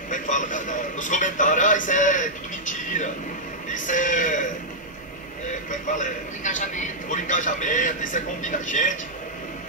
como é que fala? Nos comentários, isso é tudo mentira, isso como é que fala? Por engajamento, isso é combina gente.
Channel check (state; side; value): normal; both; correlation -0.07